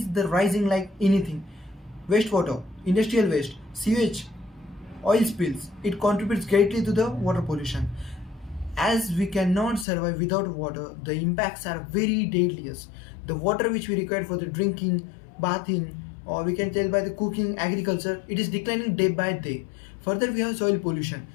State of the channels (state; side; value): drops out; right; at 9.9 s